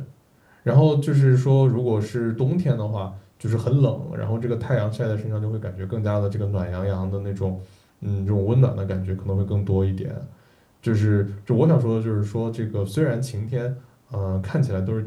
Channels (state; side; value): identical; both; correlation 1.00